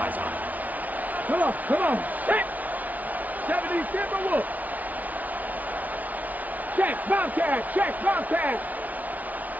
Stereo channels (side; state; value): left; late; 0.075 ms